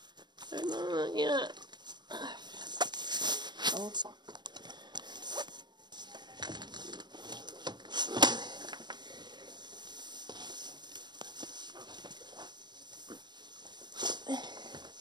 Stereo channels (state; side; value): late; left; 0.21 ms